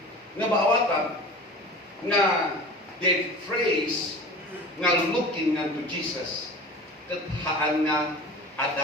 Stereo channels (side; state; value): both; normal; correlation 0.37